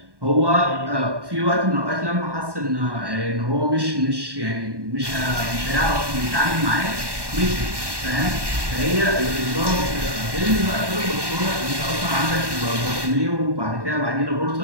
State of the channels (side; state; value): left; late; 1.1 ms